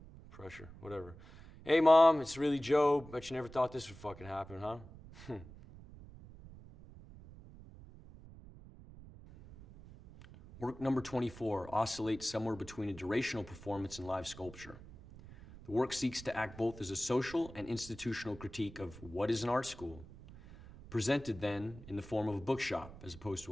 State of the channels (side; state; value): right; noise; rumble, 17 dB below the sound